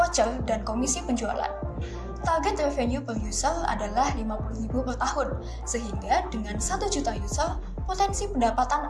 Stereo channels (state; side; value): identical; both; correlation 1.00